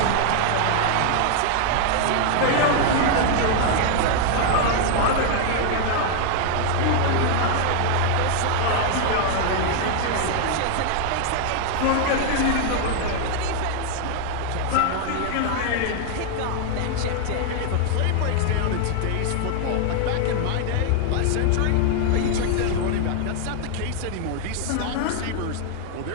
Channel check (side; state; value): both; different; correlation 0.00